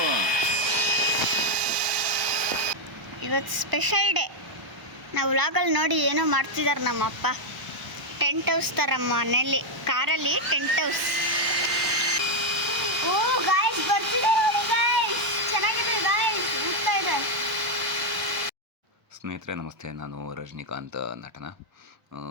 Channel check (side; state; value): left; late; 1.0 ms